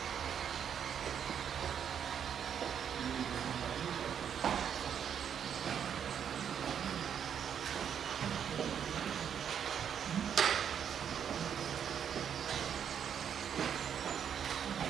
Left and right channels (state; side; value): quieter; left; 8.3 dB